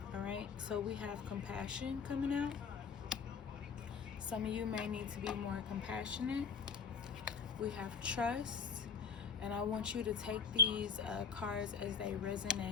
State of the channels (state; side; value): quieter; right; 5.7 dB